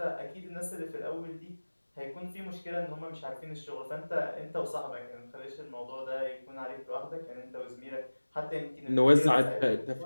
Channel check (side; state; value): both; inverted; correlation -1.00